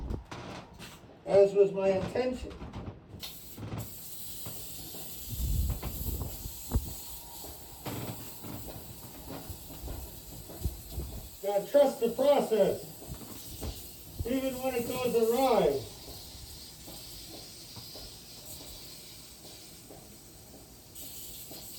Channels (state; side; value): identical; both; correlation 1.00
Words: As was my intention. Gotta trust the process, even when it goes awry.